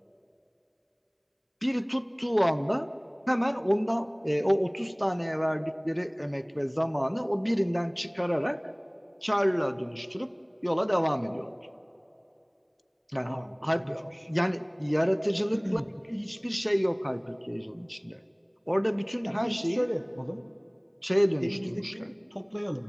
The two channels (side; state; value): both; identical; correlation 1.00